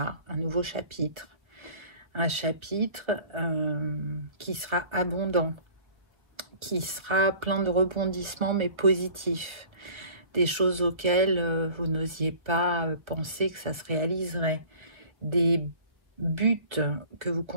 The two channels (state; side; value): late; left; 1.2 ms